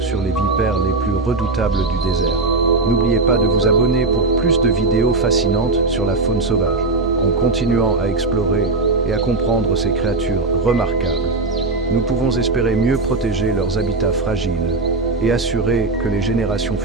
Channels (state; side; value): quieter; left; 3.4 dB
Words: les vipères les plus redoutables du désert. N'oubliez pas de vous abonner pour plus de vidéos fascinantes sur la faune sauvage, en continuant à explorer et à comprendre ces créatures remarquables. nous pouvons espérer mieux protéger leurs habitats fragiles et assurer que les générations